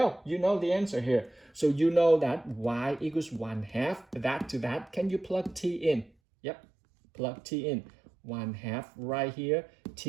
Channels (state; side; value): drops out; left; at 6.1 s